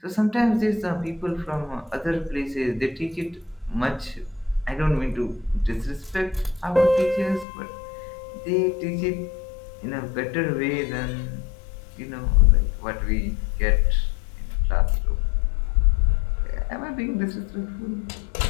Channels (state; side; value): drops out; right; at 7.5 s